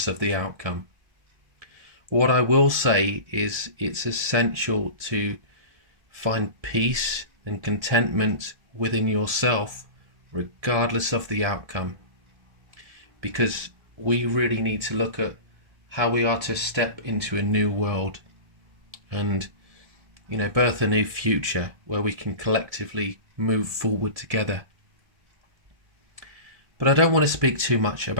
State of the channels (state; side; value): late; left; 1.9 ms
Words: of the outcome. What I will say is it's essential to find peace and contentment within yourself, regardless of the outcome. Because we really need to look at how we are to step into a new world and, birth a new future where we can collectively move forward together. But I don't want to speak too much